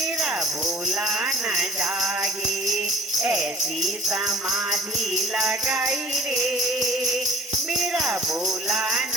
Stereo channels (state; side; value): normal; both; correlation 0.51